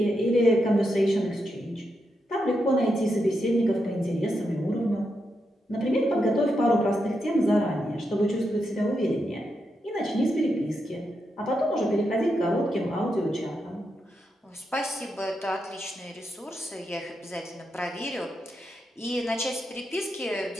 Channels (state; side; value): normal; both; correlation 0.84